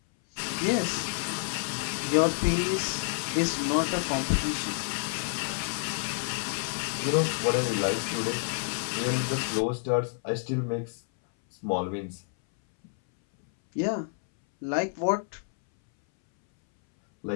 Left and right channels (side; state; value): right; silent; 59 dB below the other